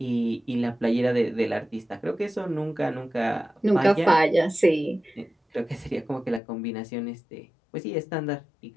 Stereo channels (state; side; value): drops out; right; at 6.4 s